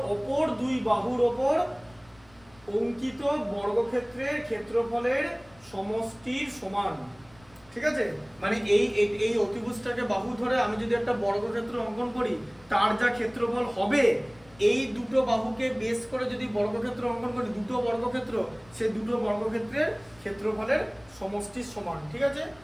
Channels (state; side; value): noise; left; rumble, 27 dB below the sound